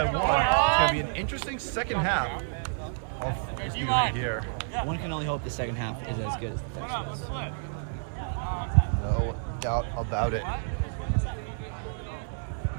1. It's going to be an interesting second half of this game right here. One can only hope the second half is as good as the first was. No doubt about it.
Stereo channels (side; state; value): left; silent; digital silence